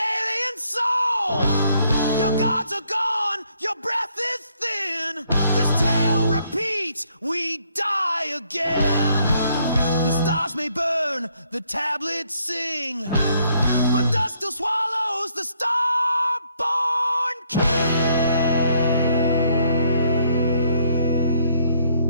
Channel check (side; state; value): both; inverted; correlation -0.69